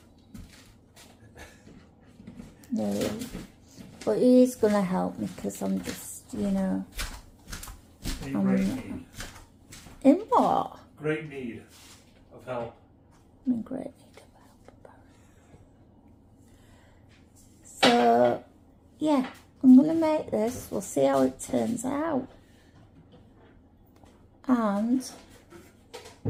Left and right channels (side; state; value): both; identical; correlation 1.00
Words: No, but he is going to help me because I'm just, you know. In great need. In what? Great need of help. I'm in great need of help. So, yeah, I'm going to make this. We'll see how it turns out. And